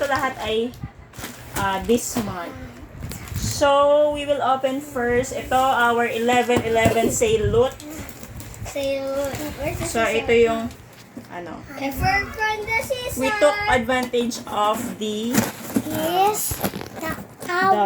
lahat ay this month. So, we will open first. Ito, our 11/11 sale loot. So, ito yung from the season. we took advantage of the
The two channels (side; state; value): both; identical; correlation 1.00